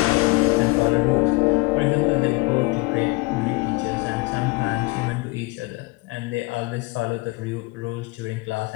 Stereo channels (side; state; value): right; quieter; 24.7 dB